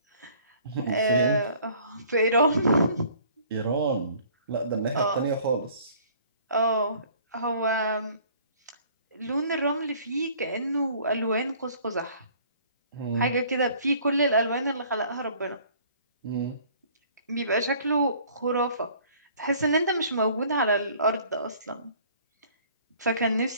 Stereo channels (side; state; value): both; inverted; correlation -0.55